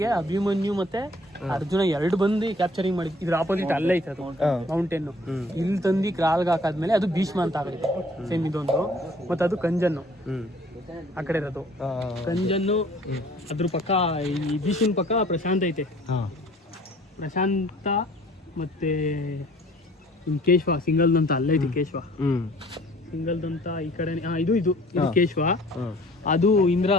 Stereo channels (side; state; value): both; normal; correlation 0.54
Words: ಅಭಿಮನ್ಯು ಮತ್ತೆ ಅರ್ಜುನ 2 ಬಂದು ಕ್ಯಾಪ್ಚರಿಂಗ್ ಮಾಡಿದ್. ಇದ್ರ ಆಪೋಸಿಟ್ ಅಲ್ಲೇ ಐತೆ ಅದು ಮೌಂಟೇನ್. ಇಲ್ಲಿ ತಂದು ಕ್ರಾಲ್ಗೆ ಹಾಕಾದ್ಮೇಲೆ ಅದು ಭೀಷ್ಮ ಅಂತ ಆಗೈತೆ. ಸೇಮ್ ಇದೊಂದು. ಮತ್ತೆ ಅದು ಕಂಜನ್ನು ಆ ಕಡೆ ಇರೋದು. ಕಂಜನ್ನು ಅದ್ರ ಪಕ್ಕ, ಈ ಭೀಷ್ಮನ್ ಪಕ್ಕ ಪ್ರಶಾಂತ್ ಐತೆ. ಪ್ರಶಾಂತ ಮತ್ತೆ ಕೇಶವ ಸಿಂಗಲ್ದಂತ ಅಲ್ಲೇ ಐತೆ. ಕೇಶವ ಸಿಂಗಲ್ದಂತ ಈ ಕಡೆ. ಇದು ಕೇಶವ, ಅದು ಇಂದ್ರ.